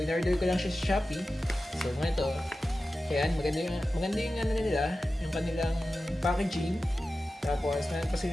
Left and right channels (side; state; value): both; normal; correlation 0.94